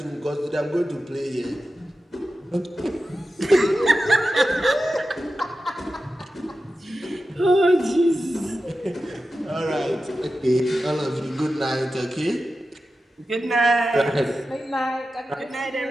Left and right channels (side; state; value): both; normal; correlation 0.92